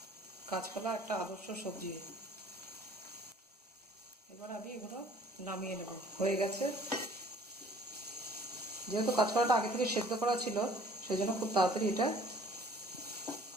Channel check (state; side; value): normal; both; correlation 0.54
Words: কাঁচকলা একটা আদর্শ সবজি। এবার আমি এগুলো নামিয়ে নেব। হয়ে গেছে। যেহেতু কাঁচকলাটা আগে থেকে সেদ্ধ করা ছিল, সেই জন্য খুব তাড়াতাড়ি এটা